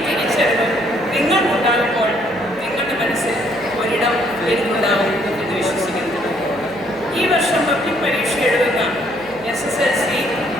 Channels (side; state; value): right; noise; hum, 22 dB below the sound